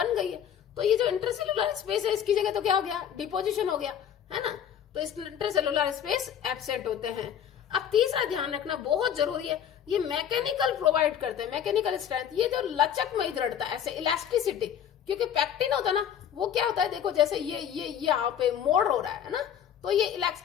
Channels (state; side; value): quieter; right; 9.2 dB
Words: गई है, तो ये जो इंटरसेल्युलर स्पेस है इसकी जगह तो क्या हो गया, डिपोजिशन हो गया, है ना। तो इस इंटरसेल्युलर स्पेस एब्सेंट होते हैं। अब तीसरा ध्यान रखना बहुत जरूरी है, ये मैकेनिकल प्रोवाइड करते हैं, मैकेनिकल स्ट्रेंथ, ये जो लचकमयी दृढ़ता, ऐसे इलास्टिसिटी, क्योंकि पैक्टिन होता है ना, वो क्या होता है, देखो जैसे ये यहाँ पे मोड़ हो रहा है ना, तो ये